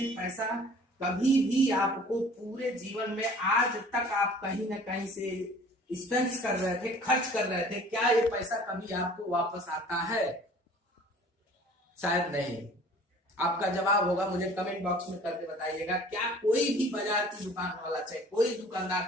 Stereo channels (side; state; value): both; normal; correlation 0.49